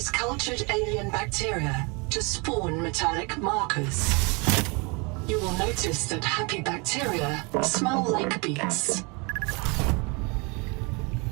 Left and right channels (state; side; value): quieter; left; 30.1 dB